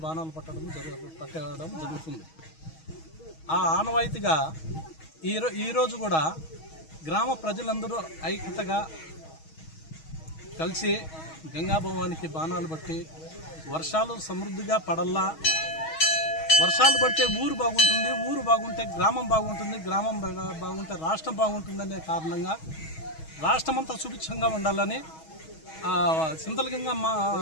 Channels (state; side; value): late; right; 6.3 ms